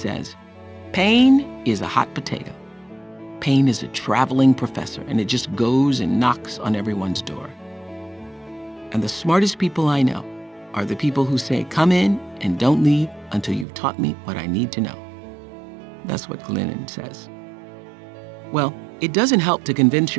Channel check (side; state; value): left; drops out; at 13.7 s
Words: pain is a hot potato. Pain is a traveling professor, and it just goes and knocks on everyone's door. And the smartest people I know are the people who say, come in and don't leave until you've taught me what I need to know. That's what Glennon says. Well, it doesn't help to convince